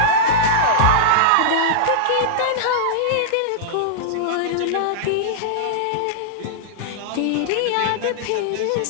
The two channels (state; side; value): different; both; correlation -0.02